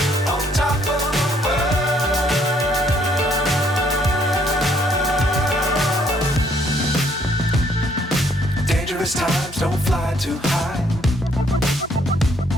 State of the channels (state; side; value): normal; both; correlation 0.66